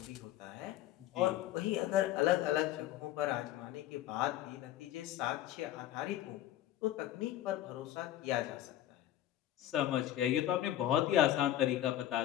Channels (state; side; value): quieter; right; 12.9 dB